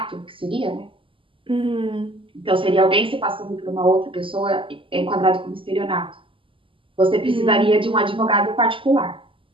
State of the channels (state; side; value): late; left; 0.25 ms